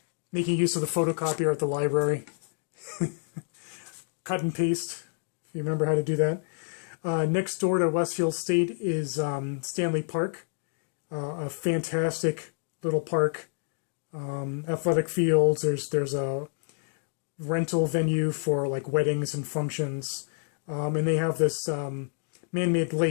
use of the photocopier at the library, cut and paste, if you remember how to do that. Next door to Westfield State is Stanley Park, a fantastic little park. Athletic fields. There's a rental venue for like weddings and functions. And they have this man-made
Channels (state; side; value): silent; right; digital silence